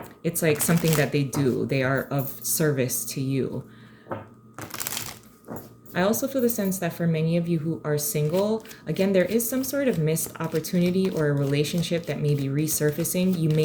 it's like something that they do. They are of service to you. I also feel the sense that for many of you who are single, again, there is some sort of missed opportunity or a relationship that may be resurfacing. You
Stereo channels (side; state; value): both; identical; correlation 1.00